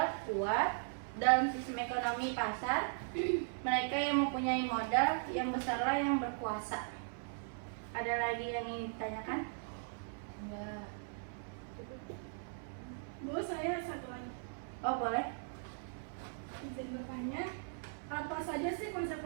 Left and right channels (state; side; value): silent; left; 52 dB below the other